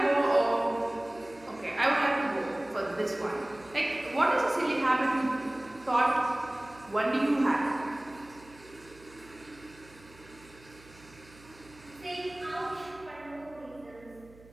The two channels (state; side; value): noise; right; hum, 23 dB below the sound